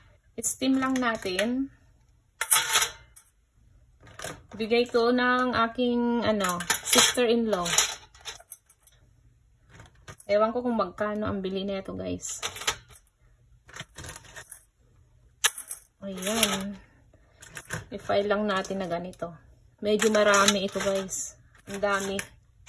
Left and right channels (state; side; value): identical; both; correlation 1.00